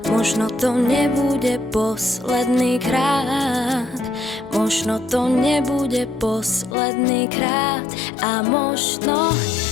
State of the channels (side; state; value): right; drops out; at 6.8 s